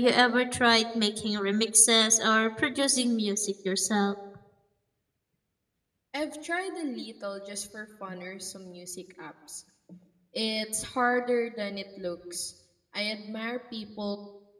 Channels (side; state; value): both; identical; correlation 1.00